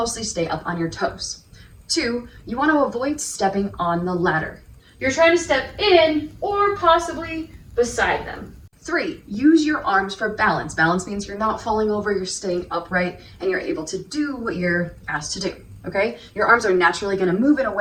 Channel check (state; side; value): identical; both; correlation 1.00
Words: stay up on your toes. 2, you want to avoid stepping on the ladder. You're trying to step in or possibly beside them. 3, use your arms for balance. Balance means you're not falling over, you're staying upright, and you're able to do what you're asked to do, okay? Your arms are naturally gonna move in a